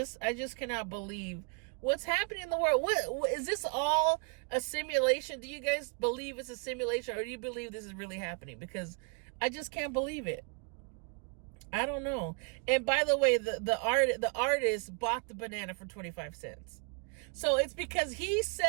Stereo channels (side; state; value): left; quieter; 36.9 dB